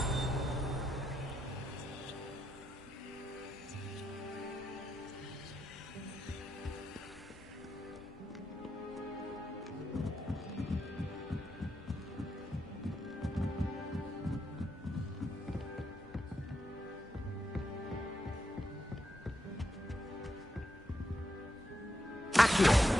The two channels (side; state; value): both; normal; correlation 0.83